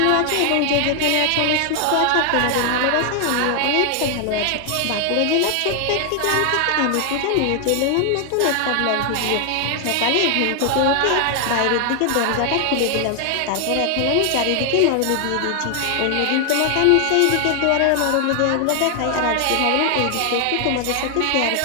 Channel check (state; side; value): different; both; correlation 0.00